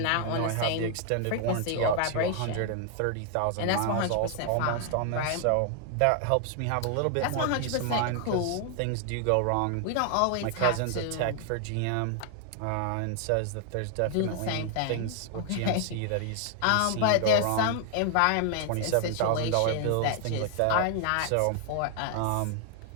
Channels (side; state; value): both; different; correlation 0.00